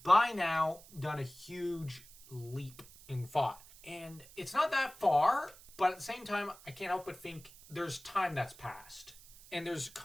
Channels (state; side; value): noise; right; hiss, 21 dB below the sound